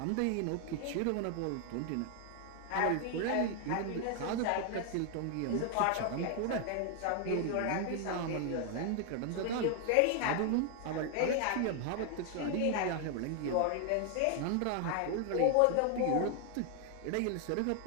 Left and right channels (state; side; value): different; both; correlation 0.00